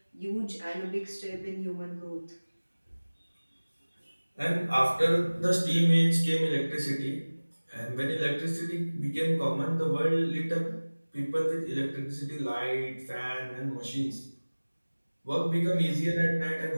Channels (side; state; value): both; inverted; correlation -1.00